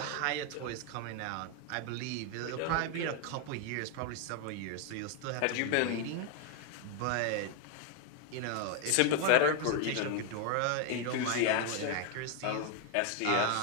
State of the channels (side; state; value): both; different; correlation 0.01